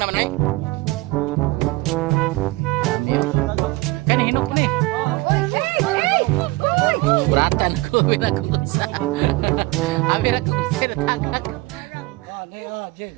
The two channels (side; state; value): left; quieter; 21.4 dB